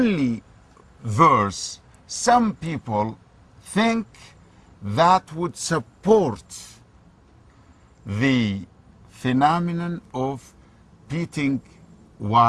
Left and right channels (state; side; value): identical; both; correlation 1.00